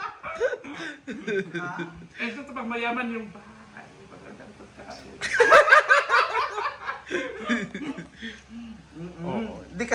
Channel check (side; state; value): both; identical; correlation 1.00